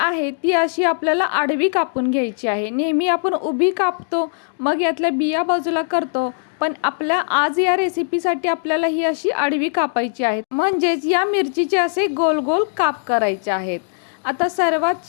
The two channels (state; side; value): silent; right; digital silence